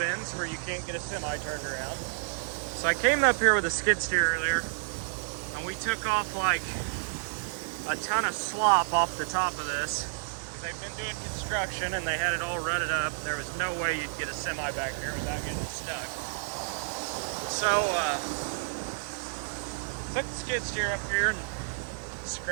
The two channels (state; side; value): silent; left; digital silence